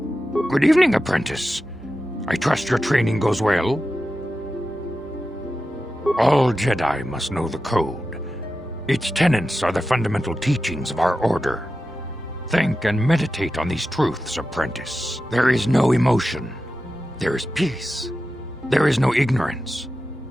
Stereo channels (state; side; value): normal; both; correlation 0.92